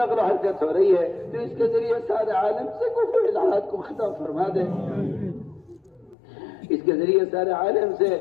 و حرکت ہو رہی ہے تو اس کے ذریعے سارے عالم سے کفر و الحاد کو ختم فرما دے، اس کے ذریعے سارے عالم سے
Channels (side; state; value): right; drops out; at 6.2 s